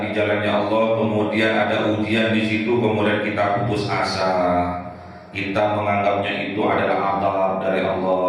di jalannya Allah, kemudian ada ujian di situ, kemudian kita putus asa, kita menganggapnya itu adalah adab dari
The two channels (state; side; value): identical; both; correlation 1.00